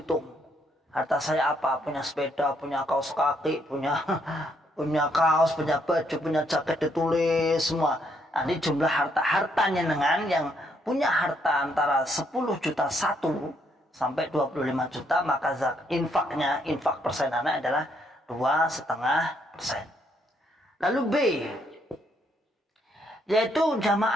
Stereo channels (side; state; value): both; normal; correlation 0.72